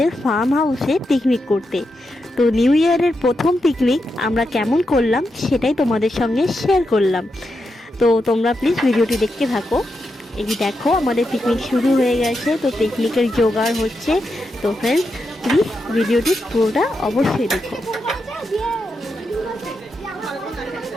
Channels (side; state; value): both; normal; correlation 0.86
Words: ফার্ম হাউসে পিকনিক করতে। তো নিউ ইয়ারের প্রথম পিকনিক আমরা কেমন করলাম সেটাই তোমাদের সঙ্গে শেয়ার করলাম। তো তোমরা প্লিজ ভিডিওটি দেখতে থাকো। এই দেখো আমাদের পিকনিক শুরু হয়ে গেছে, তো পিকনিকের জোগাড় হচ্ছে। তো ফ্রেন্ডস, প্লিজ ভিডিওটি পুরোটা অবশ্যই দেখো।